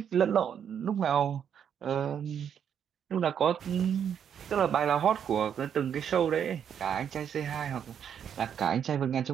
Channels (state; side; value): quieter; left; 8.4 dB